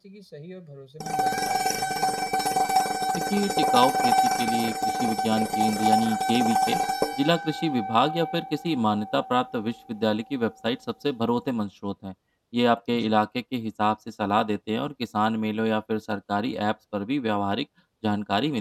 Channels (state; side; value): identical; both; correlation 1.00